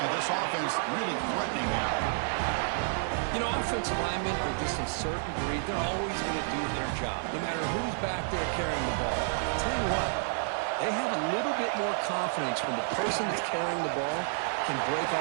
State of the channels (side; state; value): left; silent; digital silence